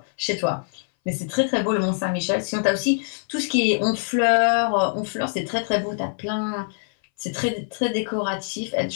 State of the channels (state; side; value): silent; right; 61 dB below the other